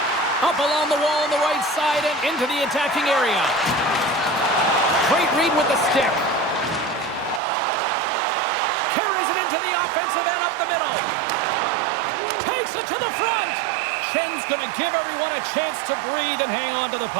Up along the wall on the right side and into the attacking area. Great read with the stick. the middle. Takes it to the front. Chen's going to give everyone a chance to breathe and hang on to the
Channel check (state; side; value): drops out; left; at 7.4 s